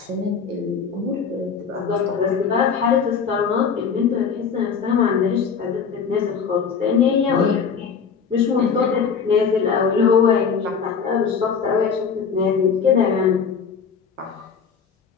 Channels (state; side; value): quieter; right; 6.3 dB